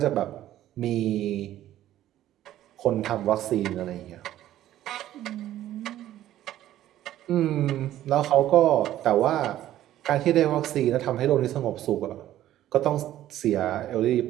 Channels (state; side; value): quieter; left; 13.1 dB